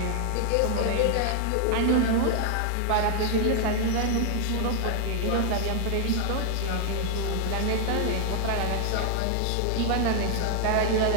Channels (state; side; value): different; both; correlation 0.00